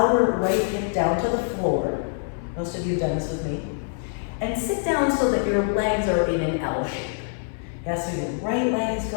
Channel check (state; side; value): silent; right; 60 dB below the other